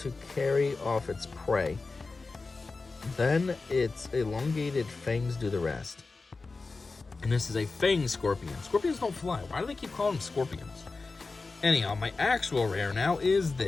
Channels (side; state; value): right; quieter; 3.9 dB